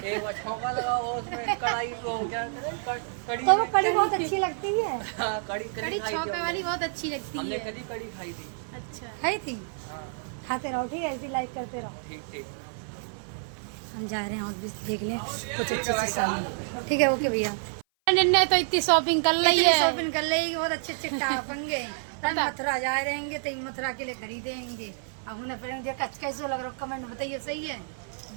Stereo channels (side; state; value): left; silent; 56 dB below the other